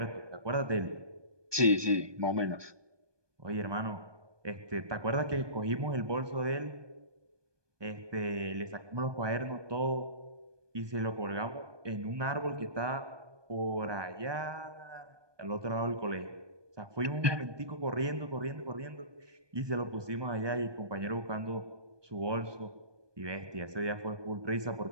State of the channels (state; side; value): late; left; 1.2 ms